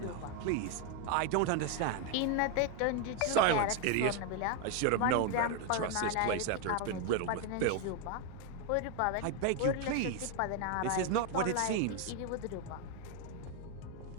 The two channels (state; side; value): different; both; correlation 0.01